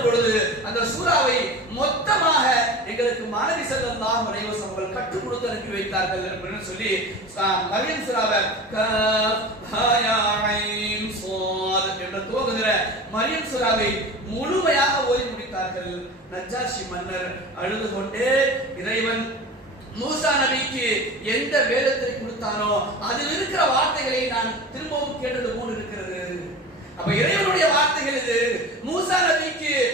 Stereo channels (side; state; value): both; normal; correlation 0.34